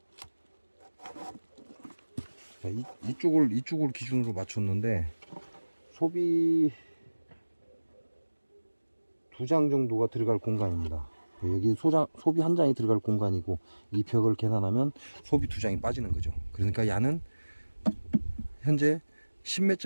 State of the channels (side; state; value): both; inverted; correlation -1.00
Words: 자, 이쪽을 기준으로 맞췄는데, 소비 2장 정도가 들어갈 공간입니다. 여기 소비 1장이 들어갈 공간이고, 이 벽을 계산하면 소비 2장이 빠지는 거죠. 그러니까 야는 현재